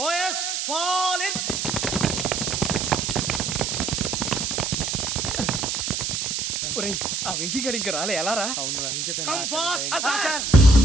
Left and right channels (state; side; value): noise; right; hiss, 1 dB below the sound